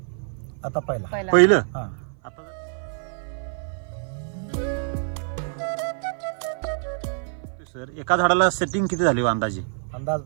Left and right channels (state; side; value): silent; left; 55 dB below the other